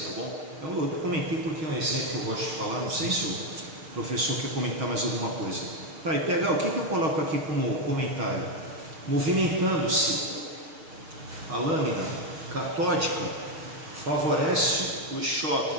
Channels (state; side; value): late; left; 6.3 ms